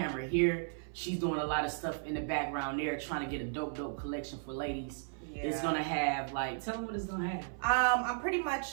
here, she's doing a lot of stuff in the background there, trying to get a dope collection for ladies. Yeah. It's gonna have like, tell them what it's gonna have. I'm pretty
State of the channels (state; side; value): silent; left; 54 dB below the other